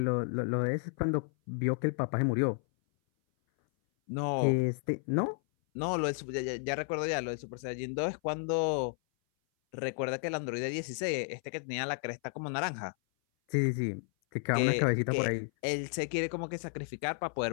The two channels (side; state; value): right; silent; 56 dB below the other